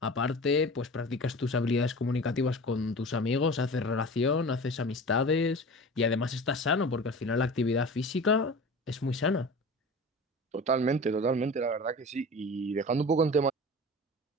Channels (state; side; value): normal; both; correlation 0.36